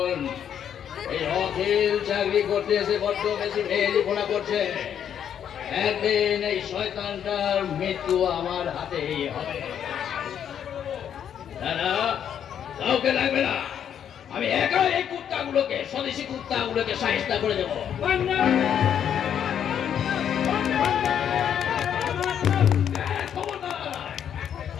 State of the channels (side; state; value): right; quieter; 9.0 dB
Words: এই অখিল চাকরি করতে এসে বড্ড বেশি ভেলিপনা করছে। একদিন এই শয়তানটার মৃত্যু আমার হাতেই হবে। দাদা, কাউকে লাগবে না, আমি একা এই কুত্তাগুলোকে, স্বদেশি কুত্তাগুলোকে সাহিস্তা করে দেবো।